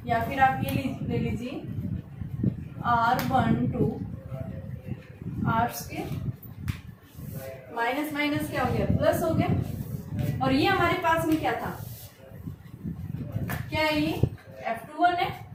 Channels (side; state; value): both; identical; correlation 1.00